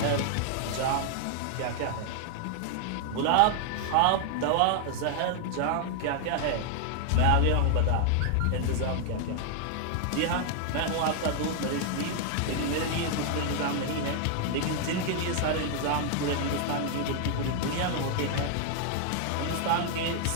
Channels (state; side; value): different; both; correlation 0.00